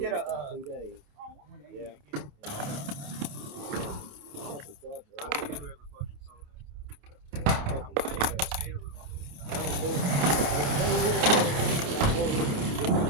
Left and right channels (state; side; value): late; left; 29 ms